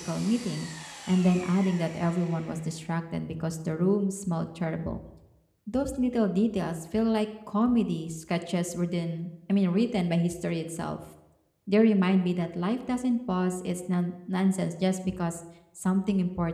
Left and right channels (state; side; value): identical; both; correlation 1.00